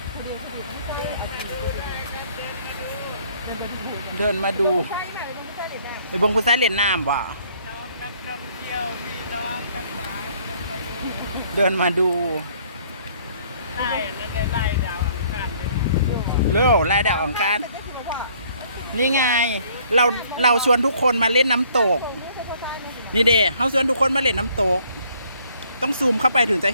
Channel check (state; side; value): inverted; both; correlation -0.61